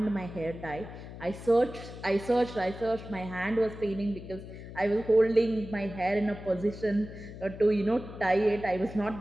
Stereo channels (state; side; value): noise; left; hum, 13 dB below the sound